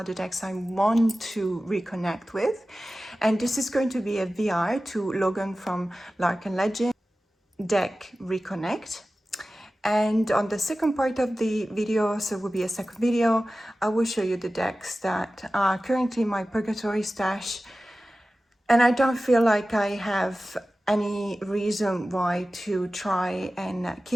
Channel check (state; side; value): normal; both; correlation 0.95